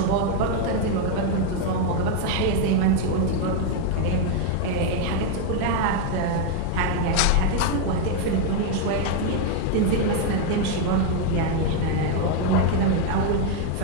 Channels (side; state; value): both; different; correlation 0.01